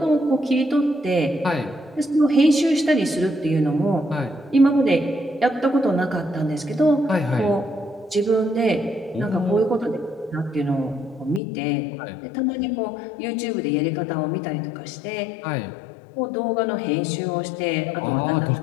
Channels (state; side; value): drops out; right; at 11.4 s